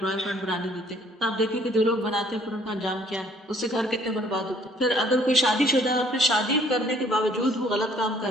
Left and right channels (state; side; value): normal; both; correlation 0.59